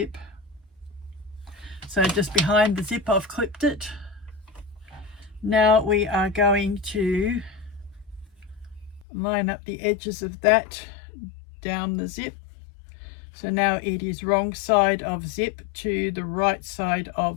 So just behind the zip I've clipped it. Now we are going to line up the edges of that down the zip. So now it is wrong side of zip to the right side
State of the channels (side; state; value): right; drops out; at 9.1 s